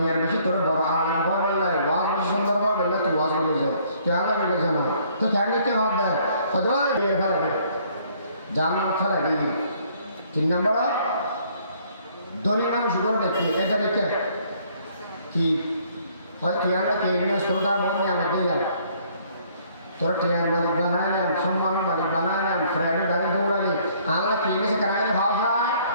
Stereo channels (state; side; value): inverted; both; correlation -0.62